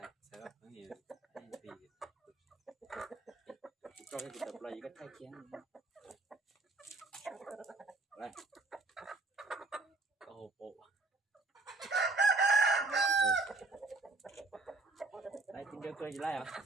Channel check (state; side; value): quieter; left; 3.3 dB